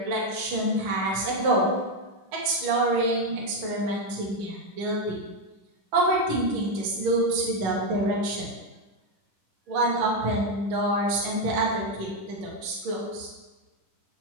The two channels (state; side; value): late; left; 10 ms